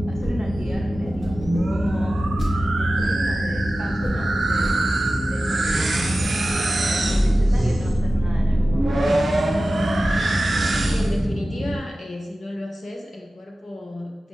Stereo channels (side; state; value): both; normal; correlation 0.95